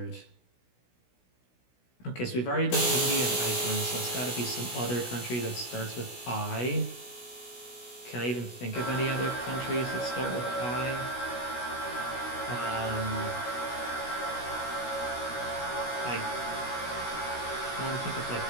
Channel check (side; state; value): right; late; 16 ms